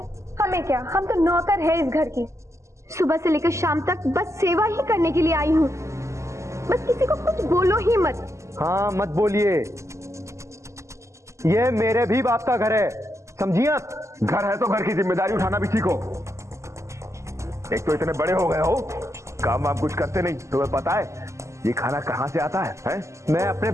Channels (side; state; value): left; late; 0.14 ms